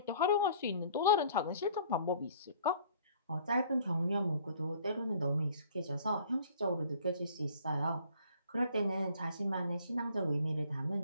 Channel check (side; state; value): both; inverted; correlation -0.54